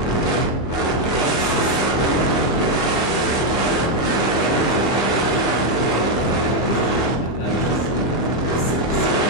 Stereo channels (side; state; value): right; late; 25 ms